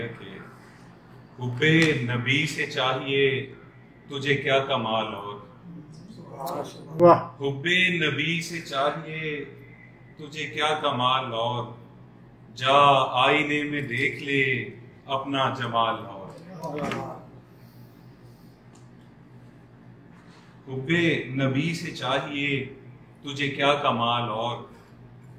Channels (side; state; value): both; identical; correlation 1.00